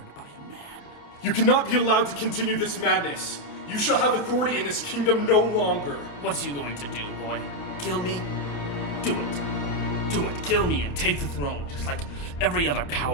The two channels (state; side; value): late; right; 28 ms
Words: by a man. You cannot be allowed to continue this madness. You shall have authority in this kingdom no longer. What's you going to do, boy? Kill me? Do it. Do it. Kill me and take the throne, just like every other